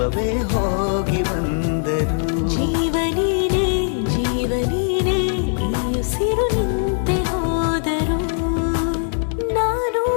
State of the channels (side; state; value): right; silent; digital silence